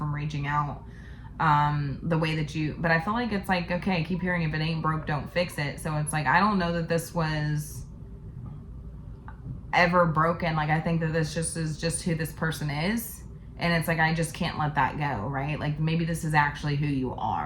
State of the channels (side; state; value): both; identical; correlation 1.00